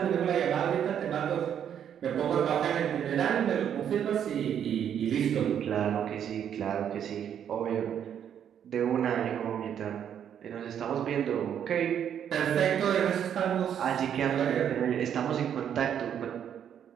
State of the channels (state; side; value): quieter; left; 9.0 dB